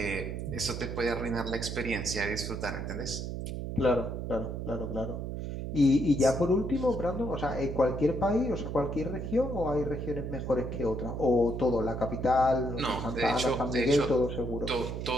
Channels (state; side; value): noise; right; hum, 5 dB below the sound